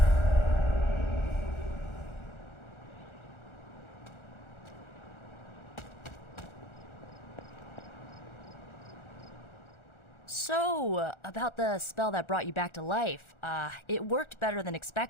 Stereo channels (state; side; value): late; right; 1.4 ms